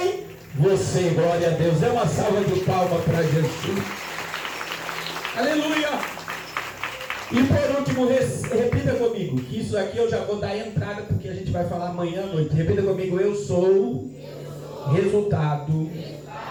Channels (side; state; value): both; identical; correlation 1.00